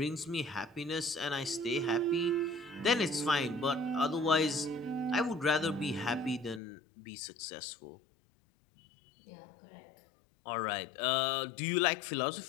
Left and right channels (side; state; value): right; drops out; at 6.6 s